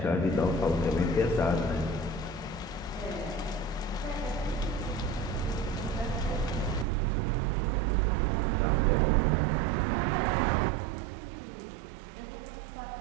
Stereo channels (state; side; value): drops out; left; at 6.9 s